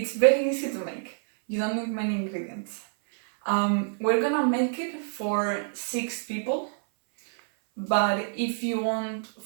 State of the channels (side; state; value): left; silent; 58 dB below the other